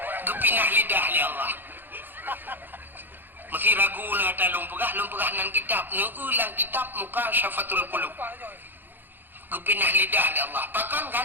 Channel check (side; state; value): left; late; 0.093 ms